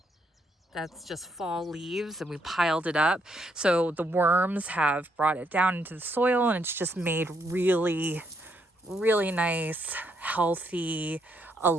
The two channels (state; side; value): normal; both; correlation 0.75